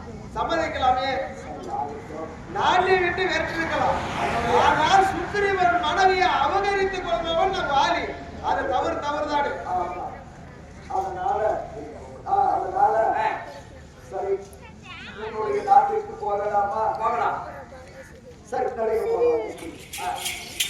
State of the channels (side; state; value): both; identical; correlation 1.00